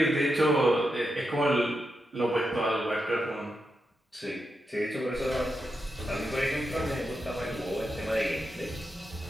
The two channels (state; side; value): normal; both; correlation 0.86